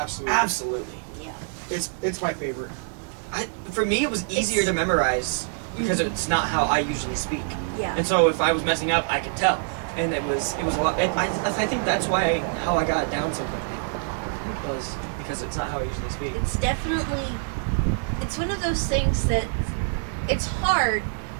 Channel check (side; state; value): left; silent; digital silence